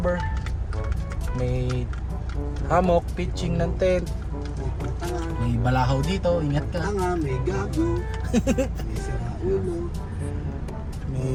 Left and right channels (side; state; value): both; identical; correlation 1.00